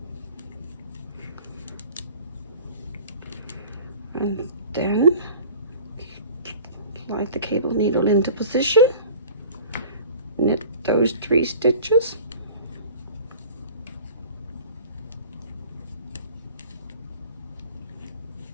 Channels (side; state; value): both; inverted; correlation -0.44